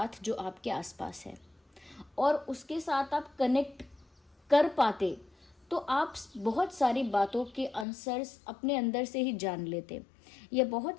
जो आपके आसपास है। और उसके साथ आप कनेक्ट कर पाते तो आप बहुत सारी बातों के आंसर्स अपने अंदर से ही जान लेते, या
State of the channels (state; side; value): drops out; right; at 7.9 s